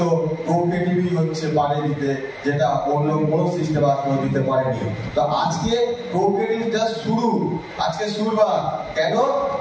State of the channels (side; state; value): both; identical; correlation 1.00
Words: কোঅপারেটিভই হচ্ছে পারে দিতে, যেটা অন্য কোনো সিস্টেম আজকেও দিতে পারেনি। তো আজকে কোঅপারেটিভ জাস্ট শুরু, আজকে শুরুবার। কেন?